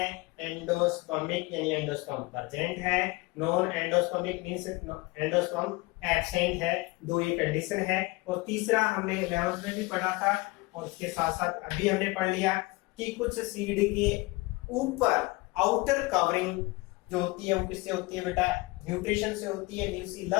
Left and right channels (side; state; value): right; quieter; 23.3 dB